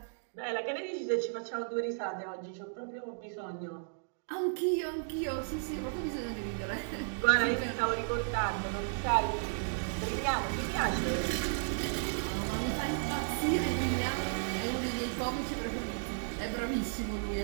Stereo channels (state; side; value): silent; left; digital silence